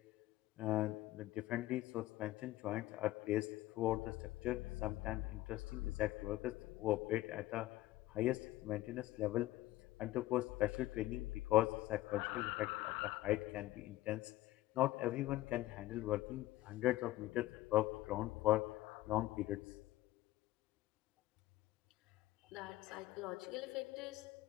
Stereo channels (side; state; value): right; quieter; 16.5 dB